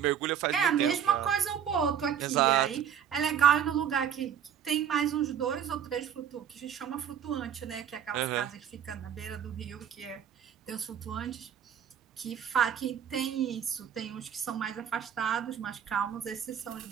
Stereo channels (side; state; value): left; quieter; 8.8 dB